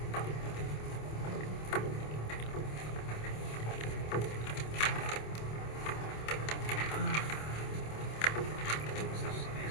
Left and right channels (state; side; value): late; right; 27 ms